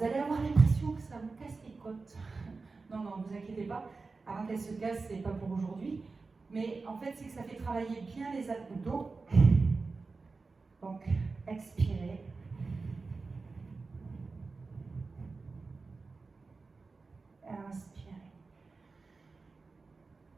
allez avoir l'impression que ça vous casse les côtes. Non, non, ne vous inquiétez pas. Avant qu'elles se cassent, c'est pas pour aujourd'hui. Mais en fait, c'est que ça fait travailler bien les abdos. Donc, expirez. Inspirez.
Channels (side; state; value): left; quieter; 4.1 dB